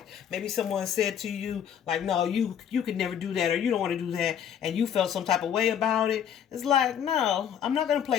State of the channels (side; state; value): right; quieter; 8.9 dB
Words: maybe someone said to you, like, no, you could never do that, or you don't want to do that, and you felt some type of way about it. It's like, no, I'm not going to